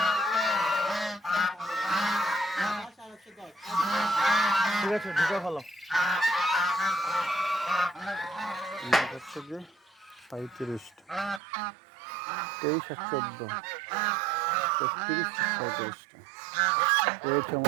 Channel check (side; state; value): left; drops out; at 11.4 s